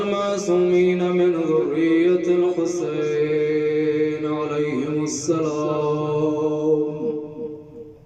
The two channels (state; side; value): identical; both; correlation 1.00